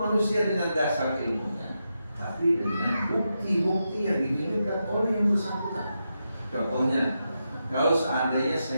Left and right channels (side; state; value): both; inverted; correlation -0.87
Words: dengan dasar ilmunya, tapi dengan bukti-bukti yang ditunjukkan oleh yang bersangkutan. Contohnya, kalau seandainya